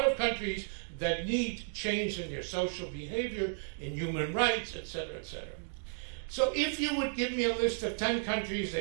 of countries that need change in their social behavior, in human rights, et cetera, et cetera. So if you would give me a list of 10 countries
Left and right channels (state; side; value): silent; left; digital silence